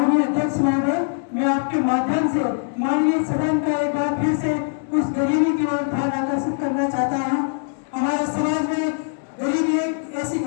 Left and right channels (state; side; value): silent; right; digital silence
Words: अध्यक्ष महोदय, मैं आपके माध्यम से माननीय सदन का एक बार फिर से उस गरीबी की ओर ध्यान आकर्षित करना चाहता हूँ। हमारे समाज में गरीबी एक ऐसी